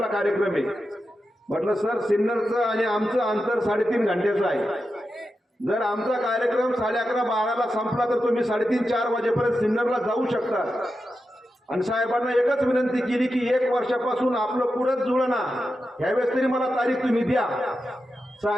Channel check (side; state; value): both; normal; correlation 0.90